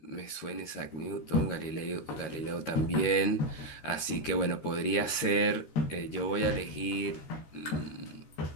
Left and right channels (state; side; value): late; right; 13 ms